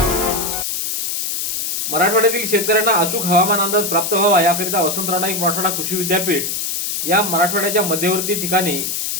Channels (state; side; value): noise; left; hiss, 2 dB below the sound